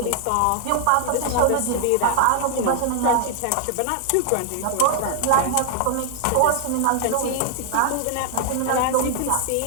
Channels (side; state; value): both; different; correlation 0.00